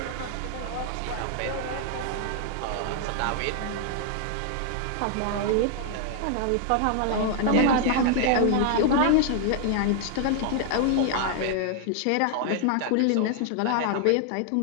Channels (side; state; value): both; different; correlation -0.01